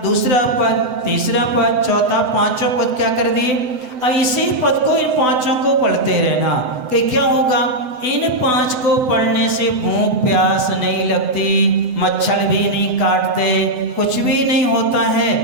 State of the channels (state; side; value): late; left; 7.9 ms